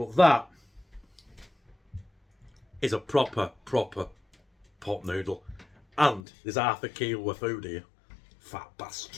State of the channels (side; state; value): right; drops out; at 6.2 s